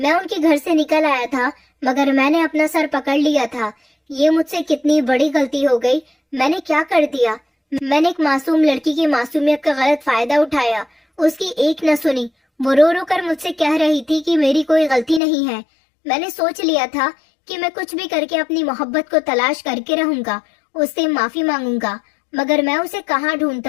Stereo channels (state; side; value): drops out; right; at 15.2 s